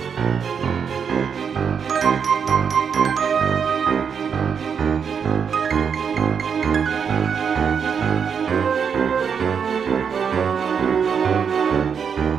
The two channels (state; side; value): quieter; left; 6.8 dB